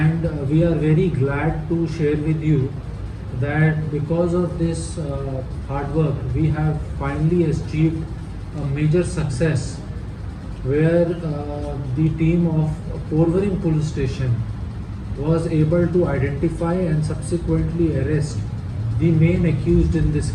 we are very glad to share with you that because of this hard work, we have finally achieved a major success where the team of Porvorim police station was able to identify and subsequently arrest the main accused in this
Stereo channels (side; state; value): both; identical; correlation 1.00